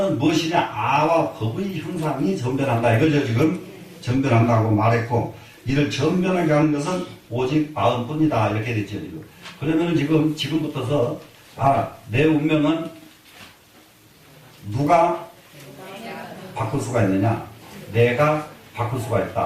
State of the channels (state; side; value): identical; both; correlation 1.00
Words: 무엇이냐? 아와 법의 형상이 전변한다. 이거죠, 지금. 전변한다고 말했고, 이를 전변하게 하는 것은 오직 마음뿐이다. 이렇게 됐죠, 지금. 그러면은 지금부터서, 내 운명은 누가 바꿀 수가 있느냐? 내가 바꿀 수가